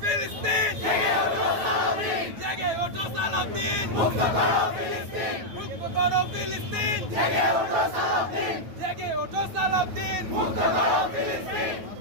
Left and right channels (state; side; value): late; left; 9.2 ms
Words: ফিলিস্তিন, জেগে ওঠো সালাউদ্দিন, মুক্ত করো ফিলিস্তিন, মুক্ত করো ফিলিস্তিন, জেগে ওঠো সালাউদ্দিন, জেগে ওঠো সালাউদ্দিন, মুক্ত করো ফিলিস্তিন।